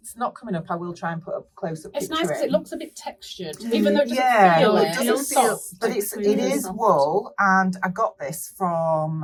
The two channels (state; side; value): identical; both; correlation 1.00